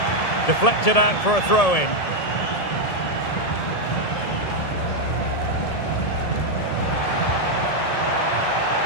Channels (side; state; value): right; late; 1.7 ms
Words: Deflected out for a throw-in.